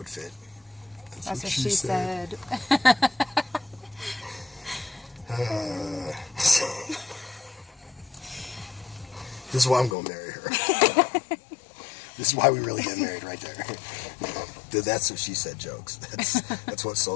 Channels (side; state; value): right; drops out; at 10.0 s